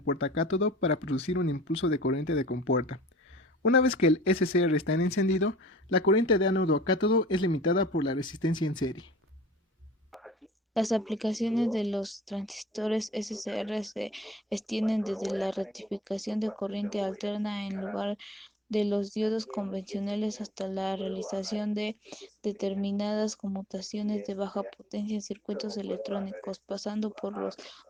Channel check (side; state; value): both; normal; correlation 0.48